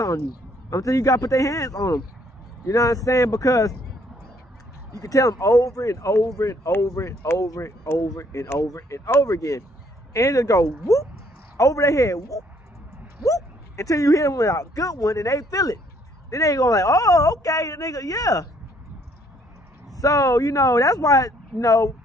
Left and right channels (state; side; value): normal; both; correlation 0.65